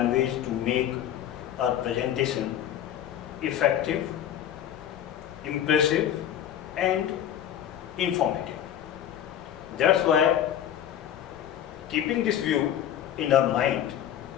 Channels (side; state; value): right; quieter; 10.5 dB